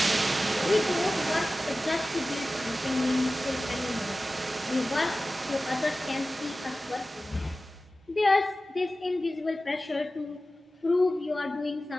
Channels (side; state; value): both; normal; correlation 0.95